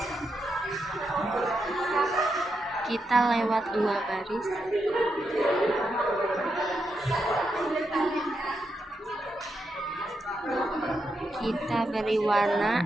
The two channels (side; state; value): both; normal; correlation 0.84